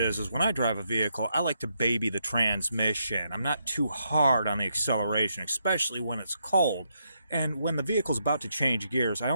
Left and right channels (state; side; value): inverted; both; correlation -0.79